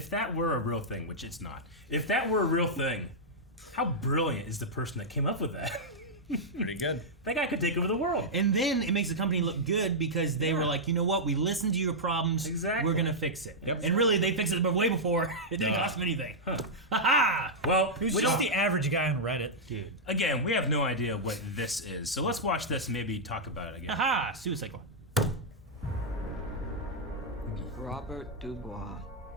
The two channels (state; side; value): normal; both; correlation -0.07